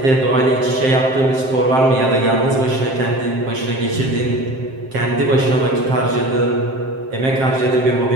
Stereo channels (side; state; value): left; late; 7.6 ms